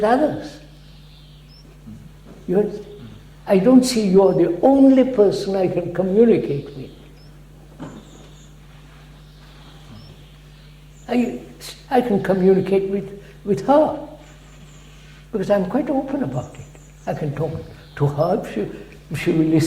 others. You understand? I don't see you're the only person I can communicate with. I can communicate with her, because I'm quite open about it. I can talk to her if she will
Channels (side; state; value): both; identical; correlation 1.00